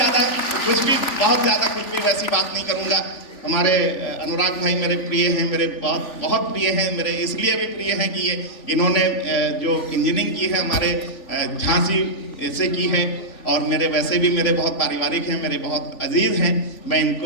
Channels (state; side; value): late; right; 3.4 ms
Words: बहुत ज्यादा कुछ भी वैसी बात नहीं करूंगा। हमारे अनुराग भाई मेरे प्रिय हैं, मेरे बहुत प्रिय हैं, मेरे इसलिए भी प्रिय हैं कि ये इन्होंने जो इंजीनियरिंग की है हमारे झांसी से की है, और मेरे वैसे भी मेरे बहुत पारिवारिक हैं, मेरे बहुत अजीज हैं, मैं